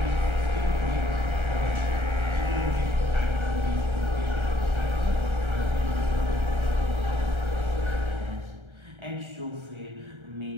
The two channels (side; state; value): left; late; 1.3 ms